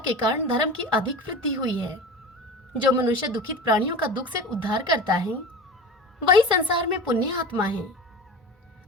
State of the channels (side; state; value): both; normal; correlation 0.33